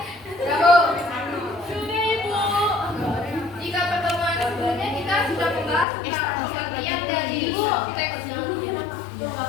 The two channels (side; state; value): right; drops out; at 5.9 s